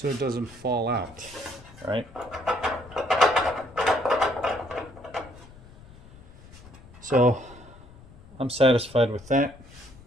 it doesn't fall out, right? So I'm satisfied with that.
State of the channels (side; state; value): left; noise; rumble, 21 dB below the sound